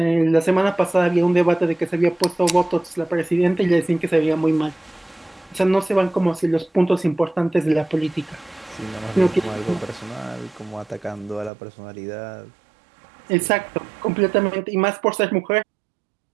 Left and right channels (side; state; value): left; drops out; at 11.5 s